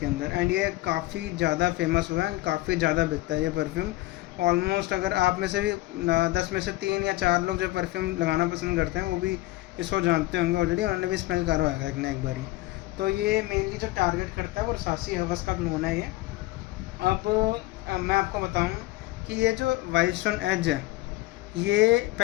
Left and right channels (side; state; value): right; quieter; 18.6 dB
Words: अंदर। एंड ये काफ़ी ज़्यादा फेमस हुआ है एंड काफ़ी ज़्यादा बिकता है ये परफ्यूम। ऑलमोस्ट अगर आप में से भी 10 में से 3 या 4 लोग जो परफ्यूम लगाना पसंद करते हैं वो भी इसको जानते होंगे ऑलरेडी, उन्होंने भी स्मेल करा होगा एक ना एक बारी। तो ये मेनली जो टारगेट करता है वो रसासी हवस का क्लोन है ये। अब मैं आपको बताऊँ कि ये जो वाइल्डस्टोन एज है, ये